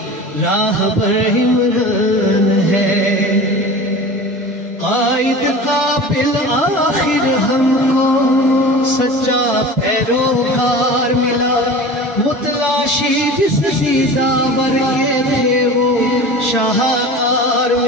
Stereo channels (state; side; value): normal; both; correlation 0.36